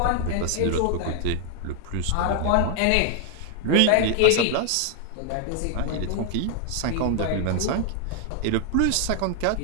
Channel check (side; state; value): both; different; correlation 0.00